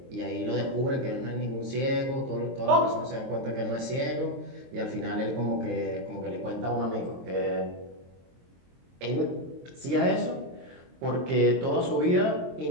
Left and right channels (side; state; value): left; late; 23 ms